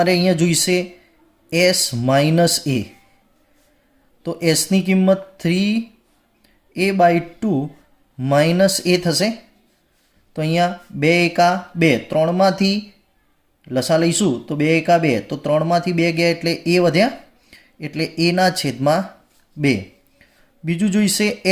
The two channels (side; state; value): both; identical; correlation 1.00